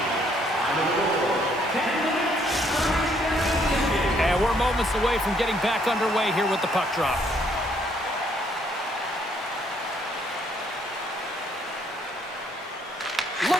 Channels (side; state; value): both; normal; correlation 0.67